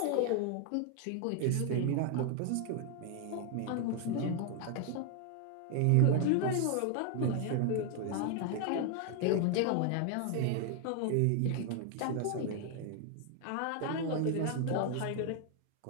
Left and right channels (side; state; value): both; different; correlation 0.00